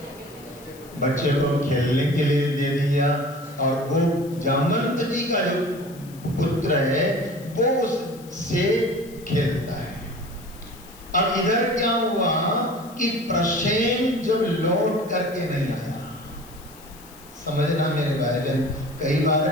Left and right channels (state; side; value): noise; left; hiss, 22 dB below the sound